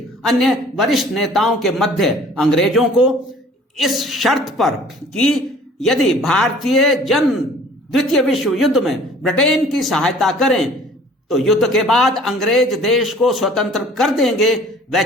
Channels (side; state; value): both; normal; correlation 0.51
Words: अन्य वरिष्ठ नेताओं के मध्य अंग्रेजों को इस शर्त पर कि यदि भारतीय जन द्वितीय विश्व युद्ध में ब्रिटेन की सहायता करें तो युद्ध के बाद अंग्रेज देश को स्वतंत्र कर देंगे,